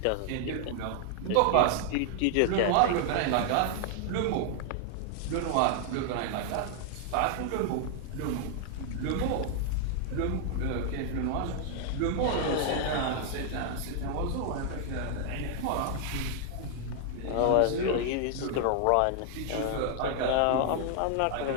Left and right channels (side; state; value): both; different; correlation 0.00